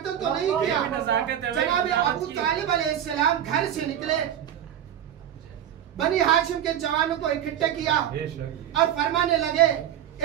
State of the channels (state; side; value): quieter; left; 10.4 dB